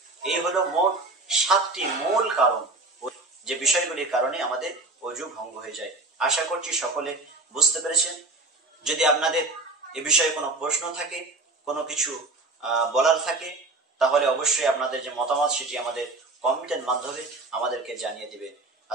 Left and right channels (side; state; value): left; quieter; 3.1 dB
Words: এই হলো মোট 7টি মূল কারণ, যে বিষয়গুলির কারণে আমাদের ওযু ভঙ্গ হয়ে যায়। আশা করছি সকলে বুঝতে পেরেছেন। যদি আপনাদের এ বিষয়ে কোনো প্রশ্ন থাকে, কোনো কিছু বলার থাকে, তাহলে অবশ্যই আপনাদের যে মতামত সেটি আমাদের কমেন্টের মাধ্যমে আমাদেরকে জানিয়ে দিবেন।